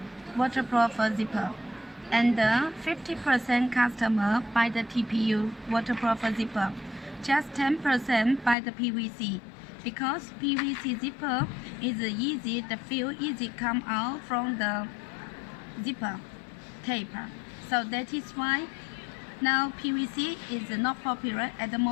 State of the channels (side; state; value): right; drops out; at 8.6 s